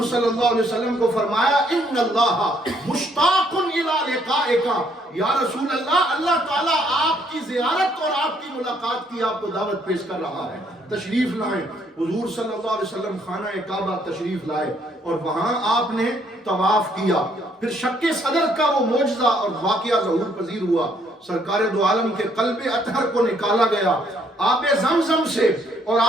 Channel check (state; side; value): normal; both; correlation 0.68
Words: صلی اللہ علیہ وسلم کو فرمایا ان اللہ مشتاق الی لقائک، یا رسول اللہ، اللہ تعالیٰ آپ کی زیارت اور آپ کی ملاقات کی آپ کو دعوت پیش کر رہا ہے، تشریف لائیں۔ حضور صلی اللہ علیہ وسلم خانہ کعبہ تشریف لائے اور وہاں آپ نے طواف کیا، پھر شق صدر کا وہ معجزہ اور واقعہ ظہور پذیر ہوا، سرکار دو عالم کے قلب اطہر کو نکالا گیا، آب زمزم سے اور